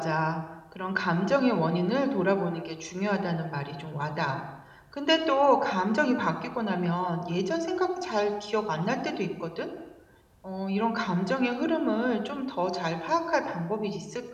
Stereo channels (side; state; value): both; identical; correlation 1.00